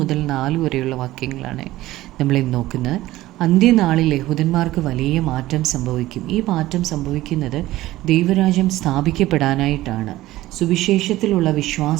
4 വരെയുള്ള വാക്യങ്ങളാണ് നമ്മളിന്ന് നോക്കുന്നത്. അന്ത്യനാളിൽ യഹൂദന്മാർക്ക് വലിയ മാറ്റം സംഭവിക്കും. ഈ മാറ്റം സംഭവിക്കുന്നത് ദൈവരാജ്യം സ്ഥാപിക്കപ്പെടാനായിട്ടാണ്. സുവിശേഷത്തിലുള്ള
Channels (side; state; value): left; quieter; 16.4 dB